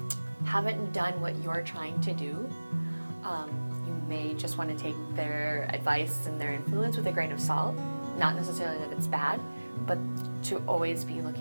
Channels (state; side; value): inverted; both; correlation -1.00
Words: haven't done what you're trying to do, you may just want to take their advice and their influence with a grain of salt. Not necessarily that it's bad, but to always be